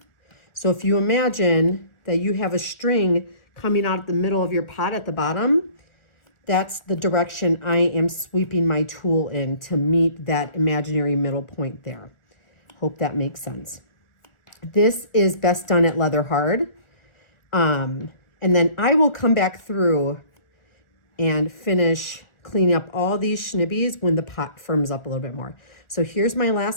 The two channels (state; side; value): late; right; 1.4 ms